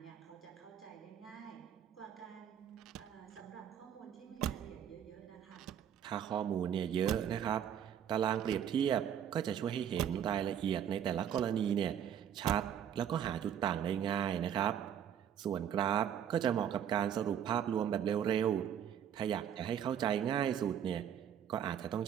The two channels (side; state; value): left; quieter; 9.3 dB